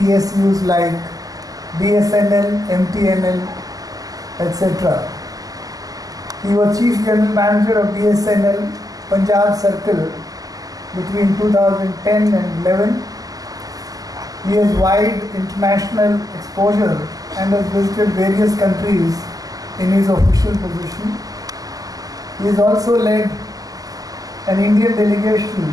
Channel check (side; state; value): left; late; 0.17 ms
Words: like BSNL, MTNL, etc. He was Chief General Manager of BSNL Punjab Circle between 2010 and 11. He has wide international exposure and has visited various countries in his official position. He has also led an Indian